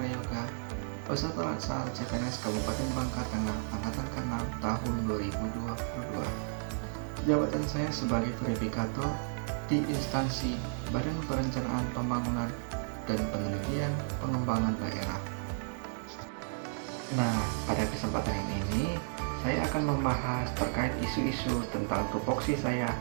peserta laksana CPNS Kabupaten Bangka Tengah Angkatan ke-6 tahun 2022. Jabatan saya sebagai verifikator di instansi Badan Perencanaan Pembangunan dan Penelitian Pengembangan Daerah. Nah, pada kesempatan ini saya akan membahas terkait isu-isu tentang tupoksi saya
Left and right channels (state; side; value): silent; left; digital silence